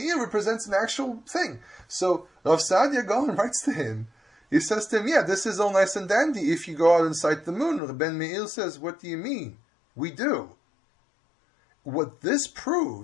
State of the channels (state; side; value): drops out; right; at 7.8 s